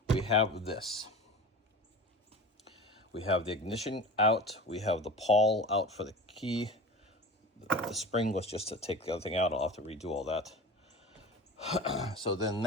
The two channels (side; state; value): both; normal; correlation 0.34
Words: We have this. We have the ignition out. We have the pawl out for the key. The spring was just to take the other thing out. I'll have to redo all that. So then